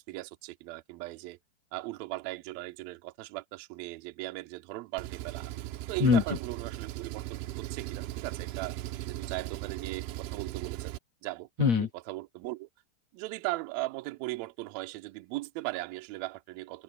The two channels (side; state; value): left; late; 9.2 ms